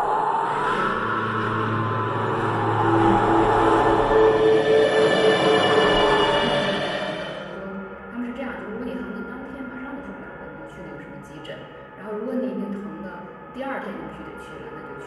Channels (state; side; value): identical; both; correlation 1.00